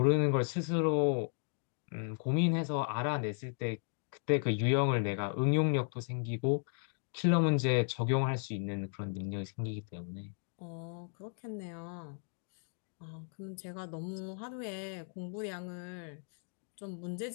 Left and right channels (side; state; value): right; silent; 54 dB below the other